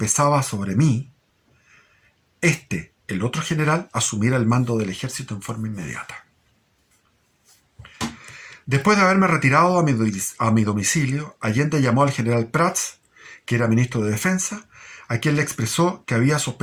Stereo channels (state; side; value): identical; both; correlation 1.00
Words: sobre mí, el otro general, asumiera el mando del ejército en forma inmediata. Después de haberme retirado a mi domicilio, Allende llamó al general Prats, que era ministro de Defensa, a quien le expresó que había